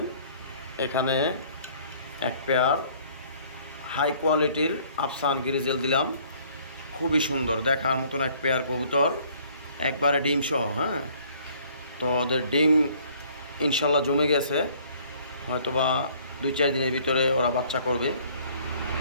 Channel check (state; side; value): inverted; both; correlation -0.58